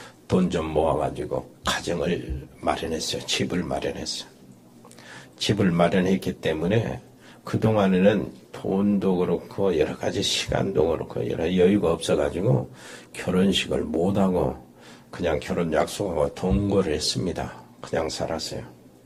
돈 좀 모아가지고 가정을 마련했어요. 집을 마련했어요. 집을 마련했기 때문에 그동안에는 돈도 그렇고 여러 가지 시간도 그렇고 여러 여유가 없어가지고 결혼식을 못하고 그냥 결혼 약속하고 동거를 했습니다. 그냥 살았어요.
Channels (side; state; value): both; identical; correlation 1.00